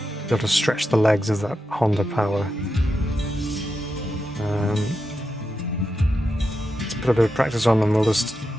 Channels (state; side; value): normal; both; correlation 0.87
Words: able to stretch the legs of that Honda power. Let's put a bit of practice on and we'll just